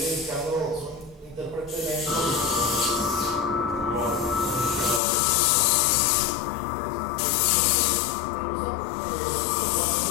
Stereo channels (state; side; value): drops out; right; at 5.0 s